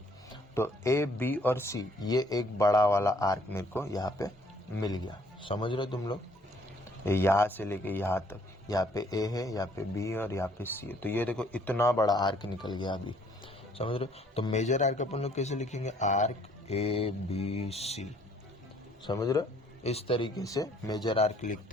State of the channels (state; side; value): normal; both; correlation 0.62